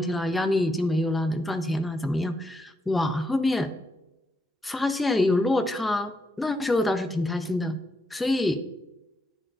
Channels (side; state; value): both; normal; correlation 0.82